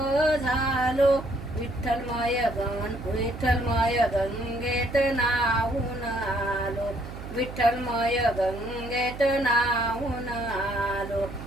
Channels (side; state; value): right; noise; hum, 11 dB below the sound